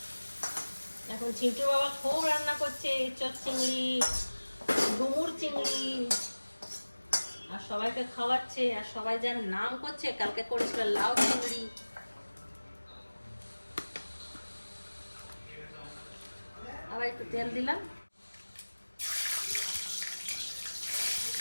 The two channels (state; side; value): inverted; both; correlation -1.00